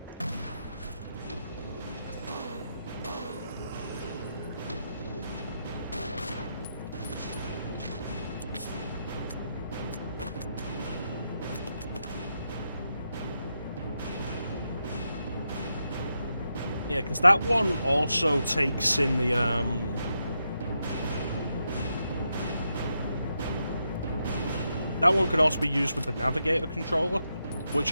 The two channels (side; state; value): both; inverted; correlation -0.83